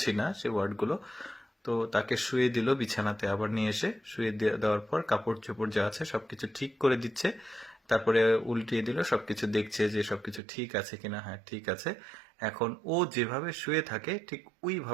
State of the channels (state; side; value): drops out; left; at 10.4 s